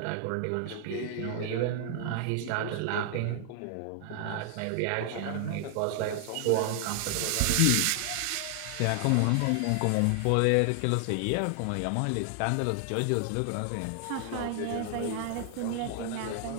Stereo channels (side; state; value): both; different; correlation 0.00